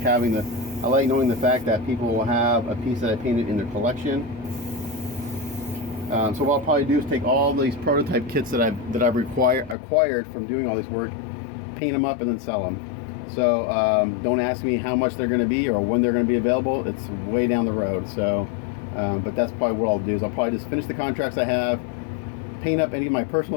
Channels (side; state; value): right; drops out; at 9.8 s